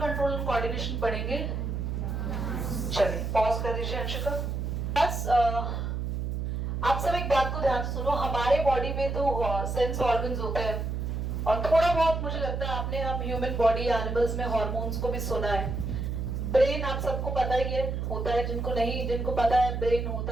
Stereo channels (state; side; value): noise; right; hum, 2 dB below the sound